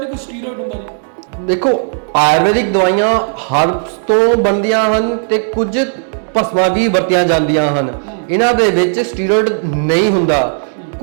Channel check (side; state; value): left; silent; digital silence